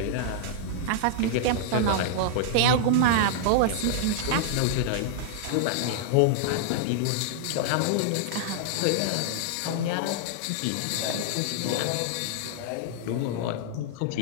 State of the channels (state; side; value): different; both; correlation -0.01